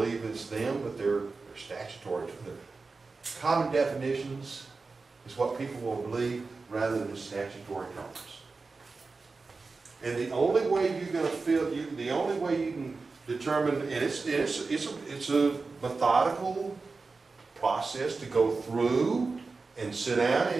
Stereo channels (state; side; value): quieter; left; 4.1 dB